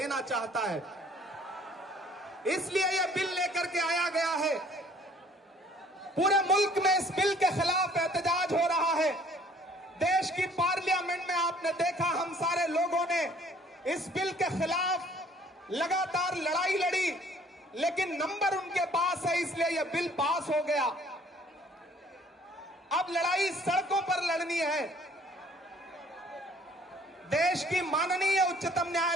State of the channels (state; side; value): normal; both; correlation 0.57